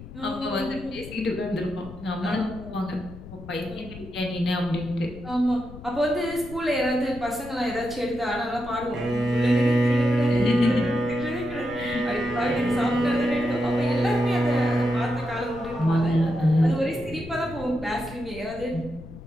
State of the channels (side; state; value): left; noise; rumble, 15 dB below the sound